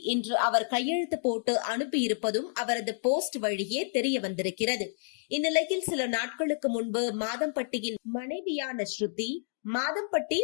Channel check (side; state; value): right; silent; digital silence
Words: இன்று அவர் கையெழுத்து போட்டு அனுப்பியிருப்பதும் அவரது போஸ்ட் வழியே தெரிய வந்திருக்கிறது. இந்நிலையில் சில நாட்களுக்கு முன்பு மாதம்பட்டியின் மனைவியான ஸ்ருதி மாதம்பட்டி